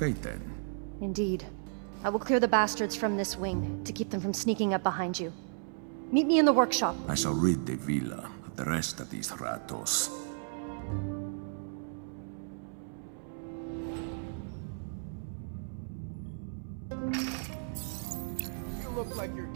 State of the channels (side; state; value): left; silent; 55 dB below the other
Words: then. Indeed. I will clear the bastards from this wing, to keep them from sneaking up behind you. Meet me in the workshop. I shall rid the villa of the rest of these ratos. You look like you're